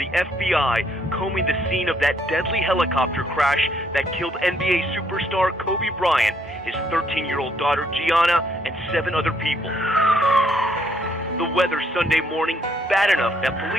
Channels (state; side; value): normal; both; correlation 0.69